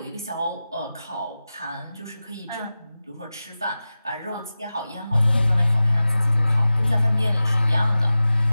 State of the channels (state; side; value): inverted; both; correlation -0.95